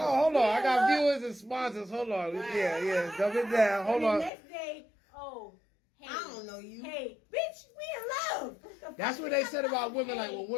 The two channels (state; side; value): drops out; right; at 4.3 s